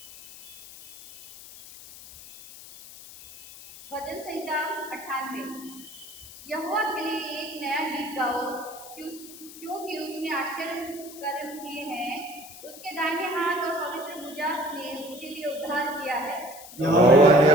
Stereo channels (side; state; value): left; noise; hiss, 16 dB below the sound